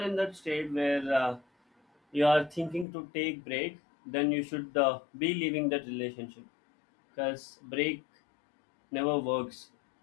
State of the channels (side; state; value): right; drops out; at 2.9 s